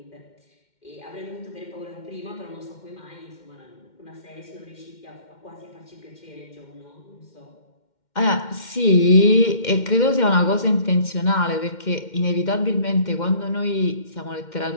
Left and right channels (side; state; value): right; late; 2.1 ms